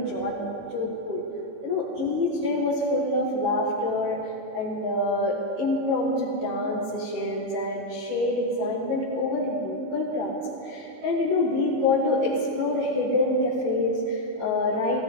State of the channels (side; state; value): left; late; 18 ms